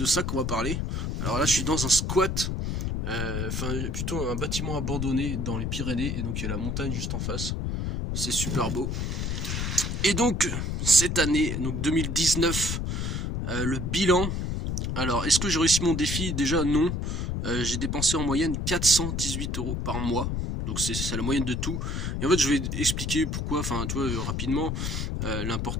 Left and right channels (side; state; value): left; noise; rumble, 1 dB below the sound